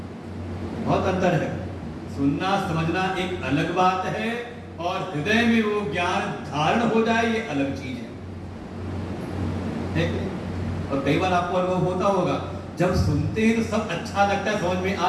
बहुत अंतर है, सुनना समझना एक अलग बात है और हृदय में वो ज्ञान धारण हो जाए ये अलग चीज है। और कई बार आपको अनुभव होता होगा जब सुनते हैं तो सब अच्छा लगता है, समझ में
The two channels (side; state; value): both; identical; correlation 1.00